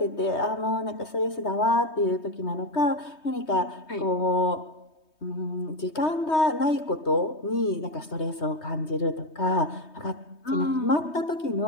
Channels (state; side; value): late; right; 3.2 ms